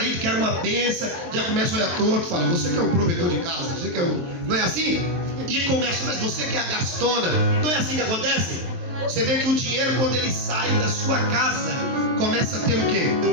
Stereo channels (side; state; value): left; late; 23 ms